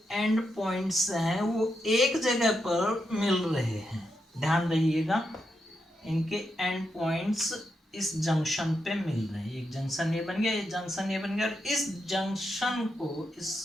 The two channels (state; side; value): normal; both; correlation 0.84